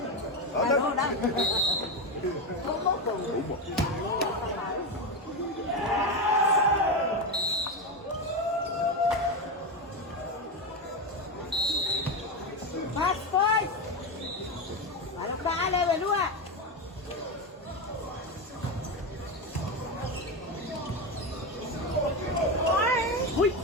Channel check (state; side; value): normal; both; correlation 0.14